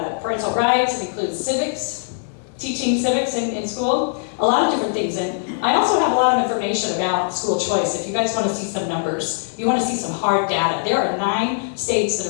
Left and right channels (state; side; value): silent; right; 65 dB below the other